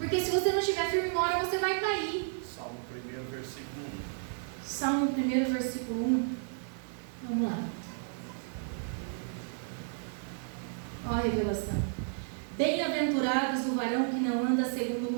se você não estiver firme, uma hora você vai cair. Salmo 1, versículo 1. Salmo 1, versículo 1. Vamos lá. Olha a revelação. Bem-aventurados o varão que não anda segundo o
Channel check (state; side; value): silent; left; digital silence